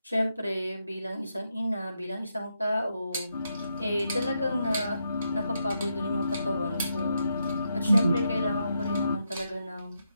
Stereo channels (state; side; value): inverted; both; correlation -0.82